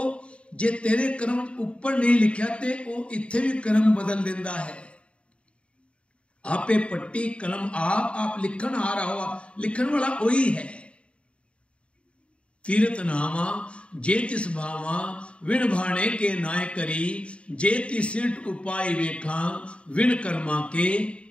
ਜੇ ਤੇਰੇ ਕਰਮ ਉੱਪਰ ਨਹੀਂ ਲਿਖਿਆ ਤੇ ਉਹ ਇੱਥੇ ਵੀ ਕਰਮ ਬਦਲ ਦਿੰਦਾ ਹੈ। ਆਪੇ ਪੱਟੀ ਕਲਮ ਆਪ ਲਿਖਣ ਆ ਰਹਾ ਹੋ, ਲਿਖਣ ਵਾਲਾ ਉਹੀ ਹੈ। ਤੀਰਤ ਨਾਮਾ ਜੇ ਤਿਸ ਭਾਵਾਂ ਵਿਣ ਭਾਣੇ ਕੇ ਨਾਇ ਕਰੀ, ਜੇ ਤਿਸਿਟ ਉਪਾਇ ਵੇਖਾਂ ਵਿਣ ਕਰਮਾ ਕੇ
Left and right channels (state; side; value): late; right; 0.060 ms